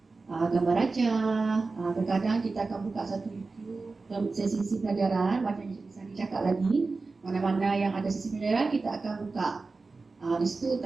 gambar raja. Kadang-kadang kita akan buka satu YouTube sesi pelajaran macam yang Cikgu Sani cakap lagi, mana-mana yang ada sesi pelajaran kita akan buka di situ,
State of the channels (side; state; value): left; quieter; 3.9 dB